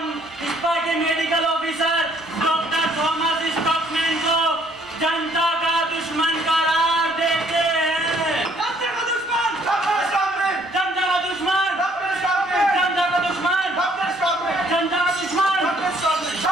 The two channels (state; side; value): normal; both; correlation 0.63